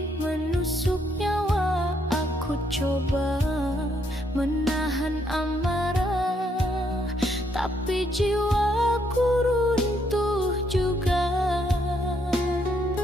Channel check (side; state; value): both; normal; correlation 0.73